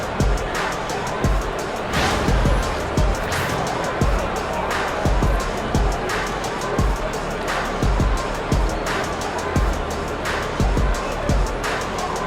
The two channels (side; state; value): both; identical; correlation 1.00